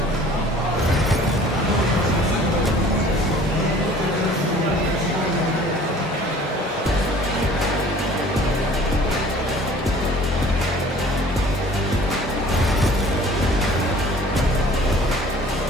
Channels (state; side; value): normal; both; correlation 0.50